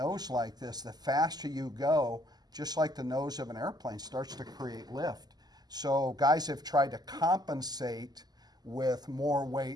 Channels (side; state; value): left; late; 0.20 ms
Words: like this, the faster you go, just like the nose of an airplane, starts to create lift. So guys have tried to compensate with more